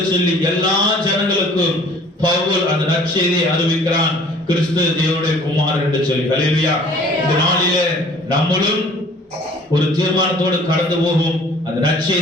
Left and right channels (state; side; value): normal; both; correlation 0.52